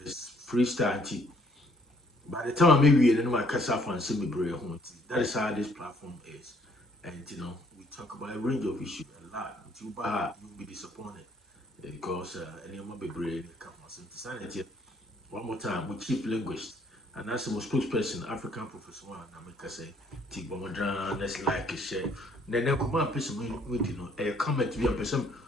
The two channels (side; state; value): both; normal; correlation 0.64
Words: freestyle. By the time I maybe in my casa fan semi that is how this platform is. And we talk about a range of issues a lot. You'll be disappointed because any of my brain come on sanity. One more time, we chief linguist and that's the most spokesperson, African Professor One, I make say Bomodran, let's like a share. Then come on, person with a comment to be a person